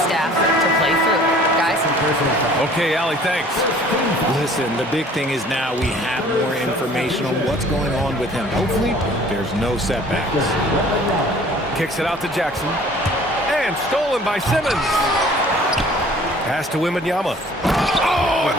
staff to play through. Guys? Okay, Allie, thanks. Listen, the big thing is now we have more information on what's going on with him. Hopefully, there's no setbacks. Kicks it out to Jackson. And stolen by Simmons. Pass to Wembanyama. Oh, and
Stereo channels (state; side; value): normal; both; correlation 0.51